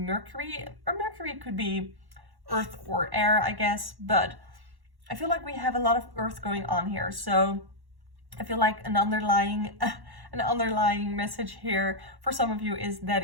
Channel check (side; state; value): left; late; 1.1 ms